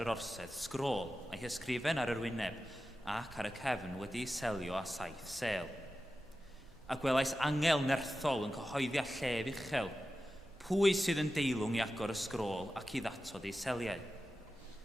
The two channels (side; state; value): both; normal; correlation 0.93